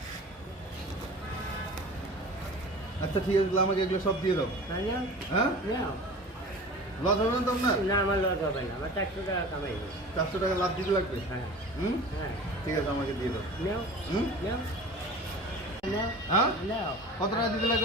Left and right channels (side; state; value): both; normal; correlation 0.39